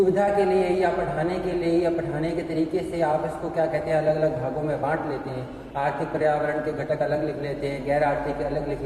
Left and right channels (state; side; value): identical; both; correlation 1.00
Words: के लिए या पढ़ाने के लिए या पढ़ाने के तरीके से आप इसको क्या कहते हैं अलग अलग भागों में बांट लेते हैं। आर्थिक पर्यावरण के घटक अलग लिख लेते हैं, गैर आर्थिक के अलग लिख